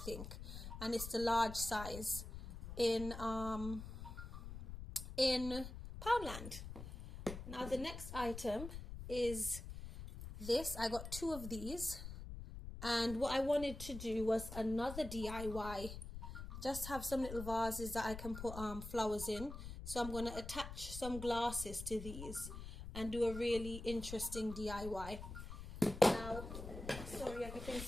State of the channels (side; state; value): left; noise; rumble, 9 dB below the sound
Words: and it's the large size in Poundland. Now the next item is this. I got 2 of these, and what I wanted to do was another DIY. Just have some little vases that I can put flowers in. So I'm going to attach some glasses to these and do a really interesting DIY. Now, sorry,